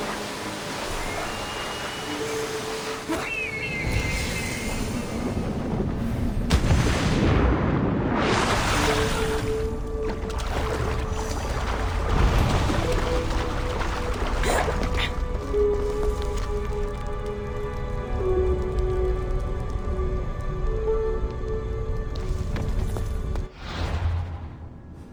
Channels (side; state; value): both; identical; correlation 1.00